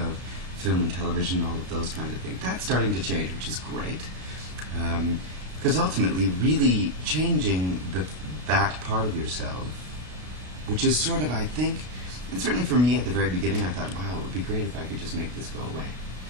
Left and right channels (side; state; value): left; late; 33 ms